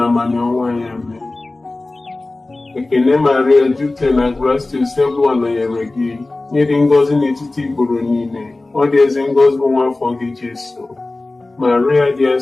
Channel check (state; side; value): quieter; right; 3.1 dB